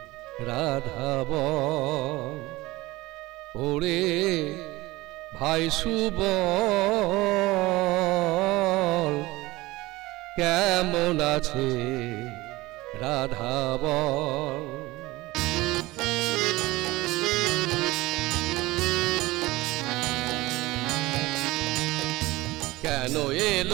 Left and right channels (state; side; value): quieter; left; 19.9 dB